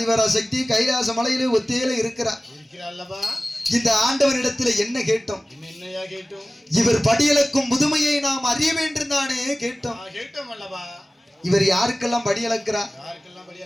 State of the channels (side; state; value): both; normal; correlation 0.97